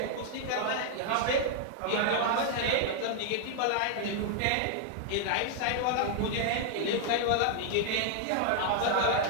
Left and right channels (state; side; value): different; both; correlation 0.00